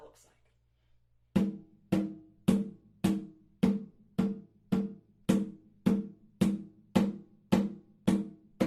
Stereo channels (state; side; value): identical; both; correlation 1.00